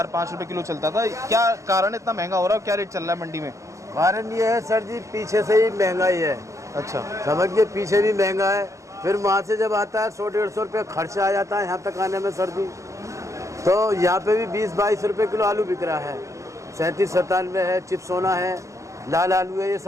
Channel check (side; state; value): left; late; 0.15 ms